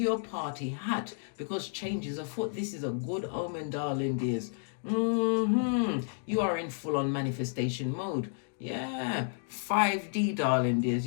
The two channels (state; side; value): silent; right; digital silence